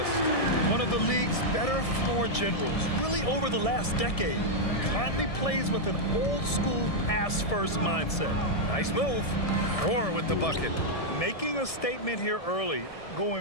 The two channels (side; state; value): right; late; 1.7 ms